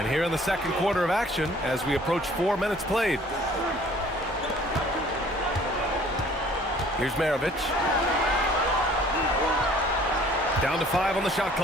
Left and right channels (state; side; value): normal; both; correlation 0.54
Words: here in the second quarter of action as we approach 4 minutes played. Here's Maravich. Down to 5 on the shot